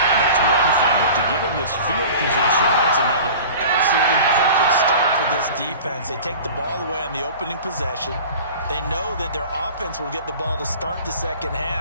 that's one thing, but to give him this field position, that's another. Absolutely perfect start for this defense. They take the ball away on the opening possession. They know that their offense will get the ball to start the second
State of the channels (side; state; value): both; inverted; correlation -0.40